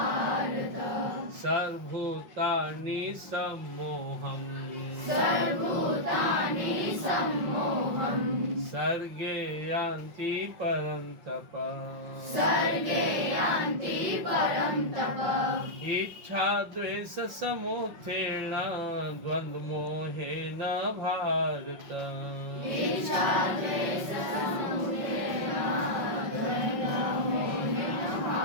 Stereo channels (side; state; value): left; late; 5.5 ms